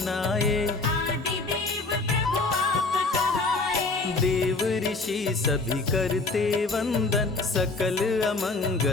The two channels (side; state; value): right; quieter; 3.5 dB